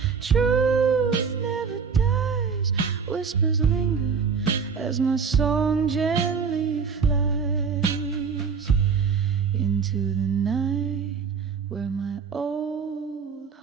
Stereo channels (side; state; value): left; quieter; 5.8 dB